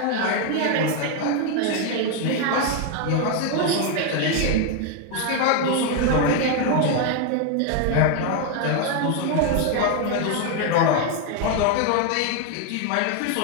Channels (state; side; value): different; both; correlation 0.01